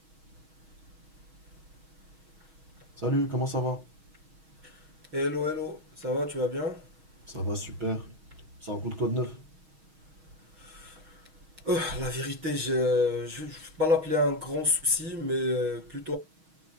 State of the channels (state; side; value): late; left; 6.3 ms